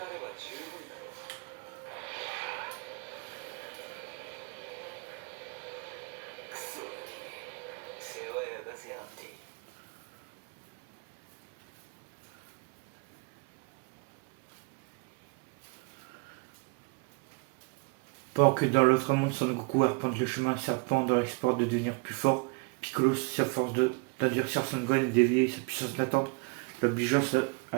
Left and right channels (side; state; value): left; quieter; 31.5 dB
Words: Pendant que dans l'autre monde, Son Goku arpente le chemin serpent dans l'espoir de devenir plus fort, Piccolo s'efforce d'endurcir Son Gohan et d'éveiller sa puissance latente, l'obligeant